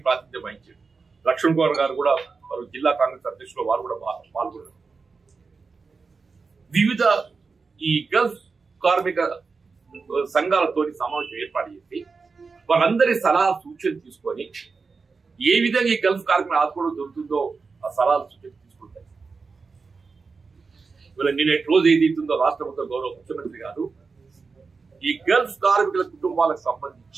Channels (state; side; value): quieter; left; 4.6 dB